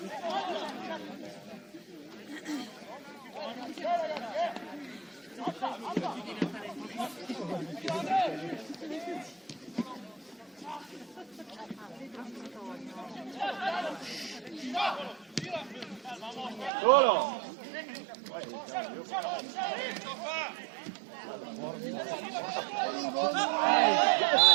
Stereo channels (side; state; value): left; drops out; at 16.7 s